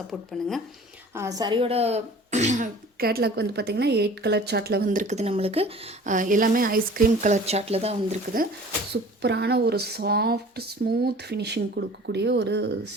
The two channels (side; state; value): both; normal; correlation 0.45